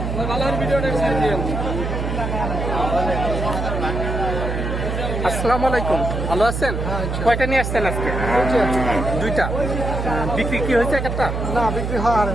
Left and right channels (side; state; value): right; noise; hum, 3 dB below the sound